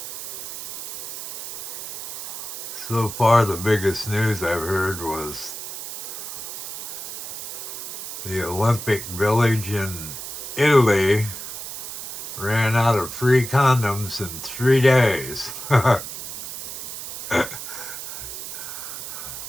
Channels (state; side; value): noise; right; hiss, 8 dB below the sound